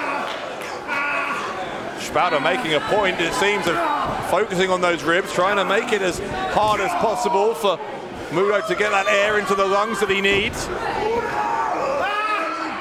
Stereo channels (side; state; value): both; identical; correlation 1.00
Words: Spalter making a point, it seems, of focusing on those ribs, trying to make it as hard as possible for Moodo to get that air into the lungs that he needs.